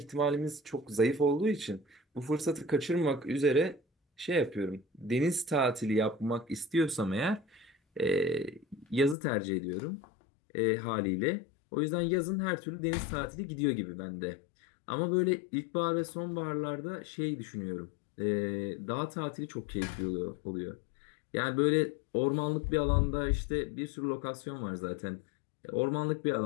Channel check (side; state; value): right; drops out; at 9.2 s